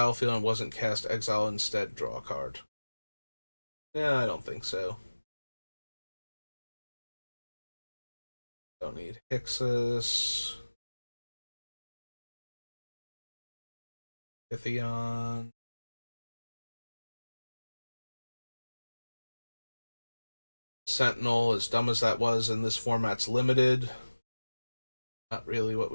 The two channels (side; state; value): both; inverted; correlation -1.00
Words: and wasn't cast, exile instead, draw a card. Yeah, I don't think so. Don't need Hixus. Pythion. Sentinel, as dumb as that was in this format's limited. Not really what